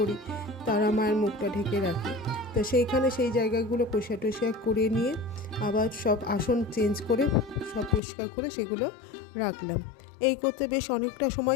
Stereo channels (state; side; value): drops out; right; at 8.0 s